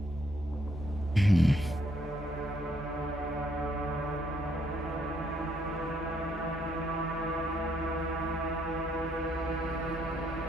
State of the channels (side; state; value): both; normal; correlation 0.71